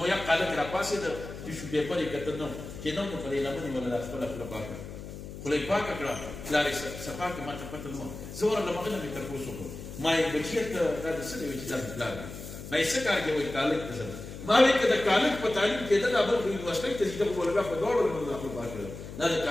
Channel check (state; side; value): noise; left; hum, 11 dB below the sound